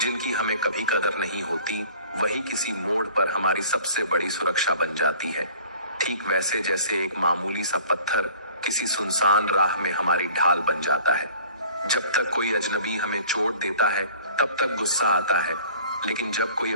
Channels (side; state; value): both; inverted; correlation -0.48